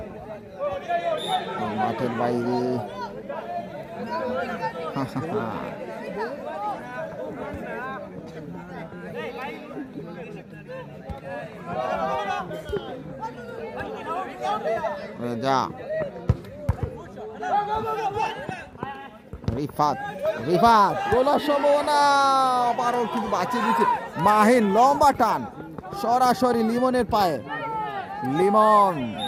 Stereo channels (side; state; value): both; identical; correlation 1.00